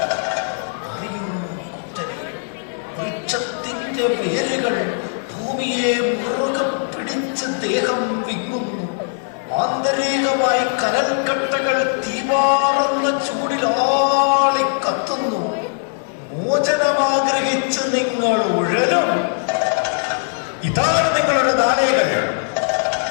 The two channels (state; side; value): silent; right; digital silence